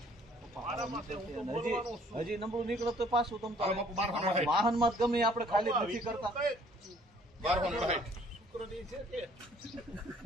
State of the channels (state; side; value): normal; both; correlation 0.59